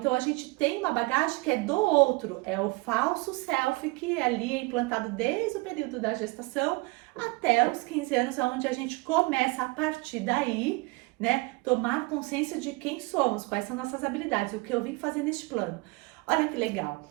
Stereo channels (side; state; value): left; quieter; 25.0 dB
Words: a gente tem uma bagagem que é do outro, é o falso self que ali é implantado desde o período da gestação até os 15 anos, onde a gente começa a partir daí, né, tomar consciência de quem somos, quais são nossas habilidades, o que eu vim fazer neste plano. Olha que legal.